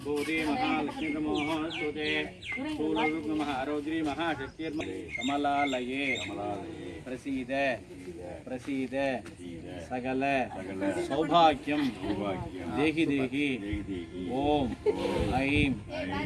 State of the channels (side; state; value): both; identical; correlation 1.00